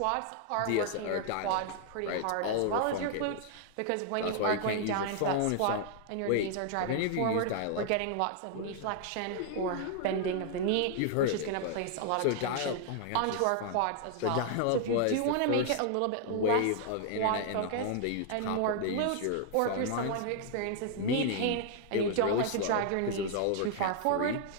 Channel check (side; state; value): both; different; correlation 0.00